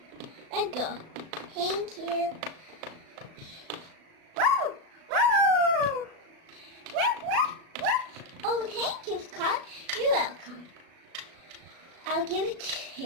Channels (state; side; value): late; left; 37 ms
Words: Let's go. Thank you. Oh, thank you, Scott. You're welcome. I'll give it